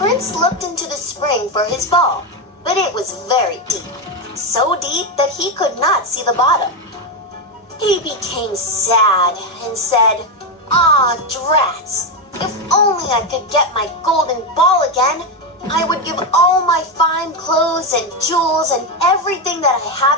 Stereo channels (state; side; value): normal; both; correlation 0.09